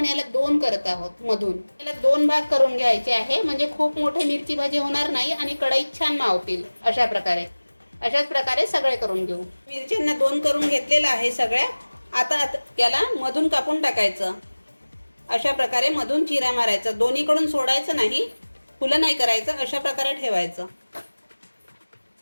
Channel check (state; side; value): inverted; both; correlation -1.00